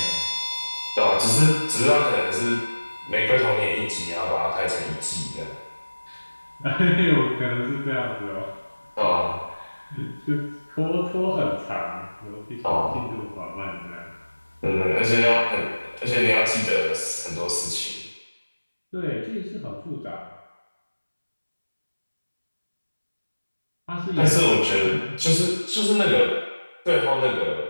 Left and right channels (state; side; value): inverted; both; correlation -1.00